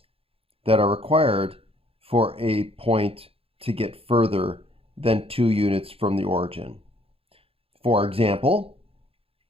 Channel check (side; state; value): left; late; 0.27 ms